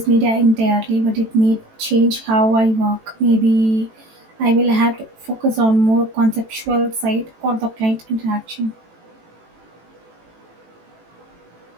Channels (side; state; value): left; late; 18 ms